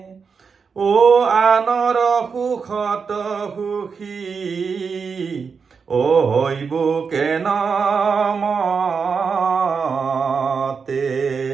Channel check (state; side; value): quieter; left; 5.6 dB